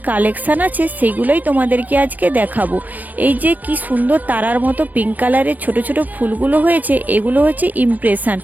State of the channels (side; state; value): left; late; 0.082 ms